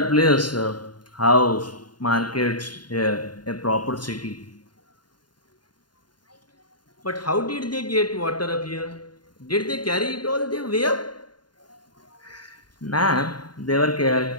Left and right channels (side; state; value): right; late; 0.70 ms